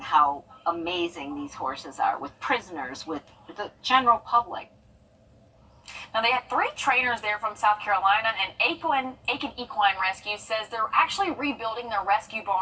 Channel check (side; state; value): both; identical; correlation 1.00